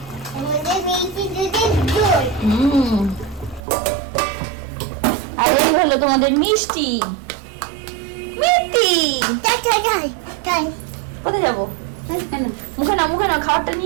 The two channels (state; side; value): drops out; left; at 3.6 s